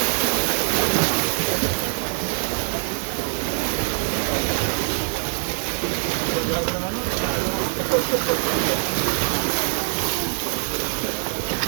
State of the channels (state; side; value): silent; left; 63 dB below the other